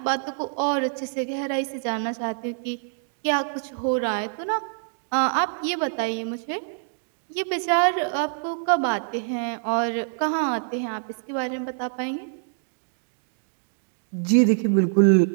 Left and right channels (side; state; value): left; silent; digital silence